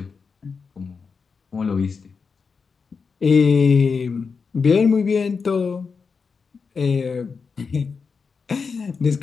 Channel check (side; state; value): right; quieter; 5.2 dB